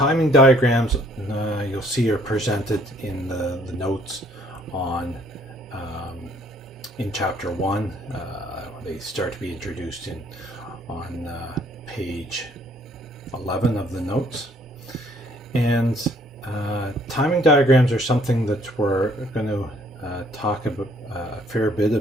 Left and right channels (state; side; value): normal; both; correlation 0.62